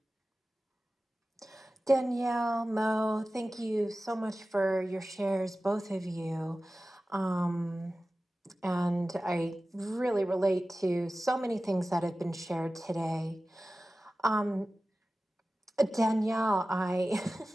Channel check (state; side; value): normal; both; correlation 0.96